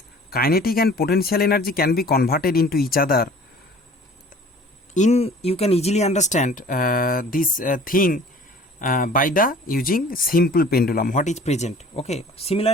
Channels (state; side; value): normal; both; correlation 0.48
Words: kinetic and potential energy can be converted into each other. You can easily understand this thing by the using simple pendulum what is present. Okay,